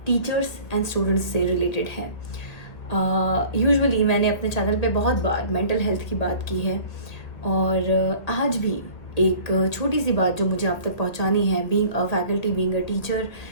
टीचर्स एंड स्टूडेंट्स से रिलेटेड है। यूजुअली मैंने अपने चैनल पे बहुत बार मेंटल हेल्थ की बात की है और आज भी एक छोटी सी बात जो मुझे आप तक पहुंचानी है, being a faculty, being a teacher,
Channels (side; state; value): right; late; 1.8 ms